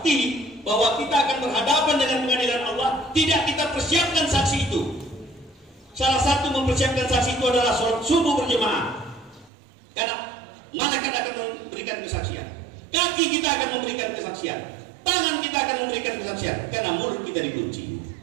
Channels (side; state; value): left; drops out; at 9.5 s